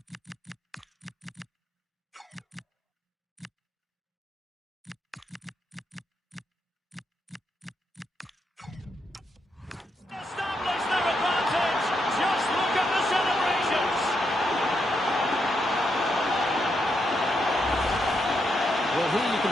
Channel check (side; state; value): both; normal; correlation 0.80